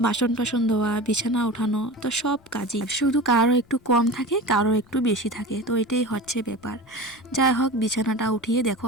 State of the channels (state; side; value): noise; left; rumble, 30 dB below the sound